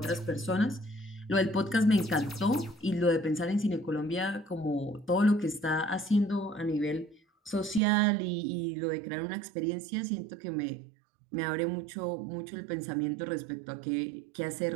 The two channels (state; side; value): drops out; left; at 7.8 s